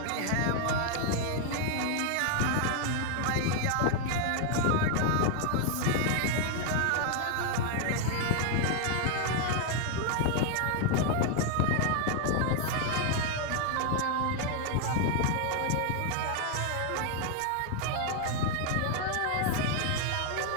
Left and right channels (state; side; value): different; both; correlation 0.00